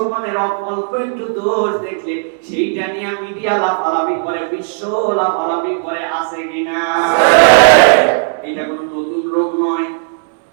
অল্প একটু দোষ দেখলে সেইটা নিয়ে মিডিয়া লাফালাফি করে, বিশ্ব লাফালাফি করে, আছে কিনা? এটা কোনো নতুন রোগ নয়।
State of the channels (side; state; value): left; silent; 66 dB below the other